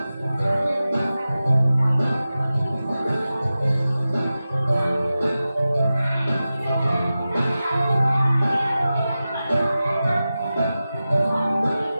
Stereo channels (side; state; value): both; inverted; correlation -0.94